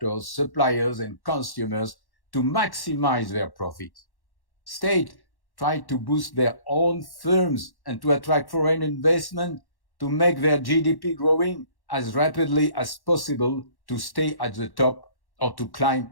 suppliers, and consumers to maximize their profits. States try to boost their own firms and to attract foreign investment to make their GDP growing as rapidly as possible to stay at the top or to climb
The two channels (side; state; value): right; late; 1.1 ms